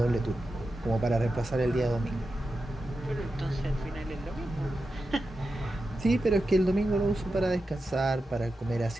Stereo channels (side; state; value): both; normal; correlation 0.90